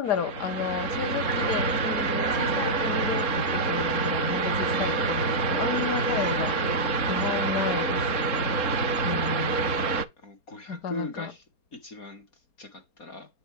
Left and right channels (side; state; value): right; late; 4.3 ms